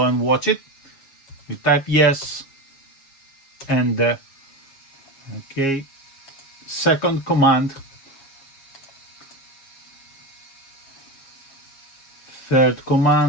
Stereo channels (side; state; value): right; late; 7.3 ms